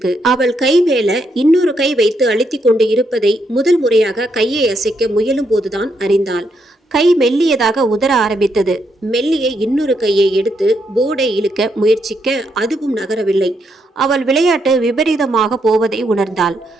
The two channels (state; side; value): normal; both; correlation 0.78